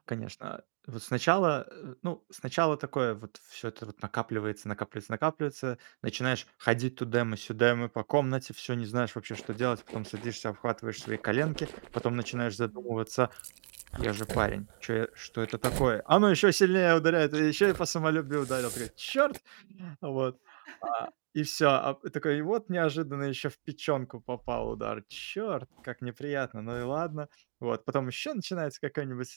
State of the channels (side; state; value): left; silent; digital silence